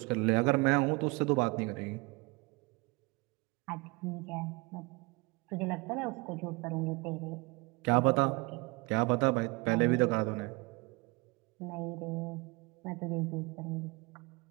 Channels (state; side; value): quieter; left; 26.4 dB